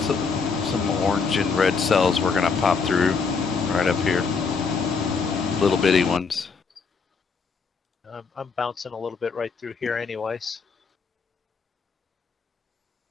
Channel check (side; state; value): right; quieter; 5.1 dB